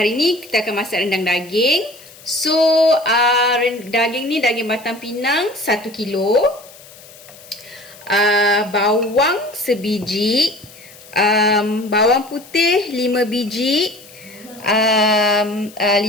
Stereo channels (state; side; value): noise; left; hiss, 21 dB below the sound